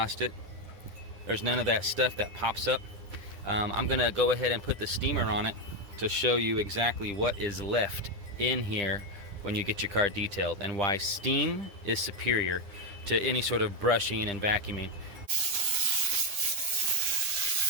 it, there's none of that stuff that pops up. I'm going to go ahead and put the steamer on it to show you exactly what is left in here when you get your car detailed and why steam is superior to any sort of brushing and vacuuming.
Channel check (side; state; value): left; late; 10 ms